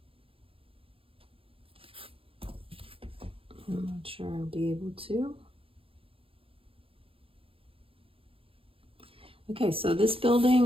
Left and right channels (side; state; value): left; late; 0.27 ms